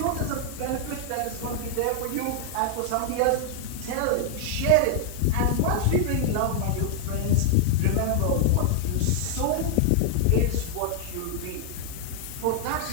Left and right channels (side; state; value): both; different; correlation 0.00